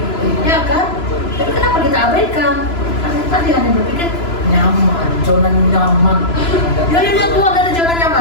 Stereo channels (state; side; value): late; right; 3.0 ms